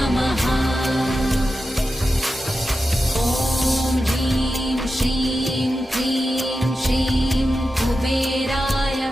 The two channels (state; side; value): normal; both; correlation 0.91